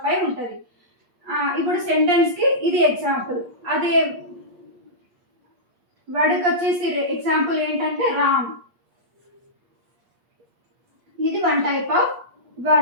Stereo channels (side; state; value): left; late; 8.5 ms